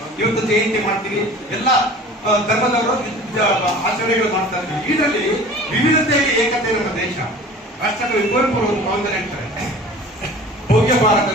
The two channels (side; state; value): both; normal; correlation 0.43